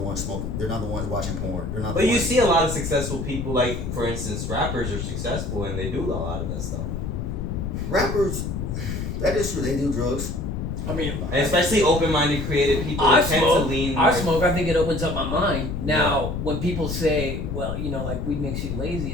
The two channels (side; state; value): left; noise; rumble, 4 dB below the sound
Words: ones smoking. They're not the ones watching porn. They're not. But you see a lot of successful people, for instance, rappers are successful and they do a lot of that stuff. Rappers, that is true. They do drugs. And especially open-minded, creative people tend to lean. I smoke. I think it opens up my mind. Now, when people say, "Well, weed makes you lazy,"